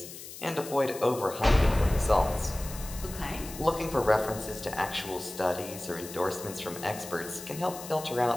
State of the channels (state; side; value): noise; left; hiss, 13 dB below the sound